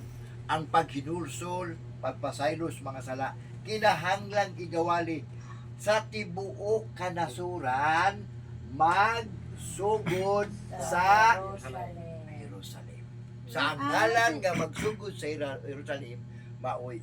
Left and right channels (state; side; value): identical; both; correlation 1.00